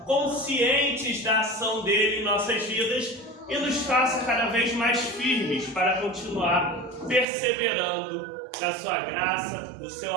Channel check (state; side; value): drops out; left; at 7.2 s